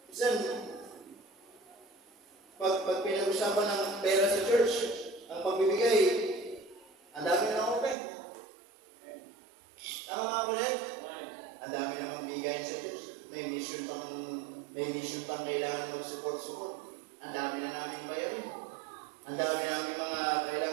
usapan ng pera sa church, ang pagbibigay, ang dami na open. Tama mga kulit? Ang dami namang bigayan sa church. May mission pang kailangan mag-support. Ang dami na namin bayarin. Ang dami namin mga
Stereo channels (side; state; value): left; drops out; at 8.0 s